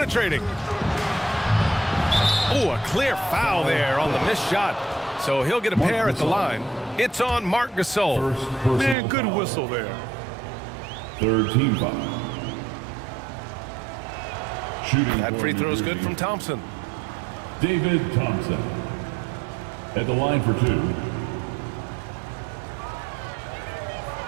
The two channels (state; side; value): drops out; left; at 9.0 s